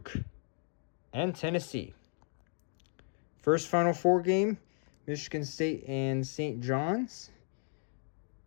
and Tennessee. First Final Four game, Michigan State and St. John's.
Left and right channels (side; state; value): right; silent; 55 dB below the other